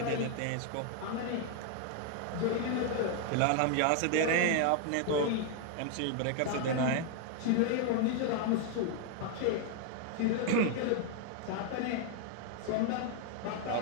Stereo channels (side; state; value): both; different; correlation 0.00